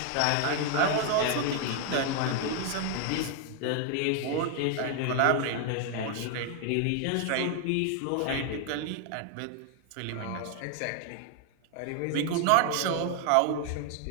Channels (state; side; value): different; both; correlation 0.00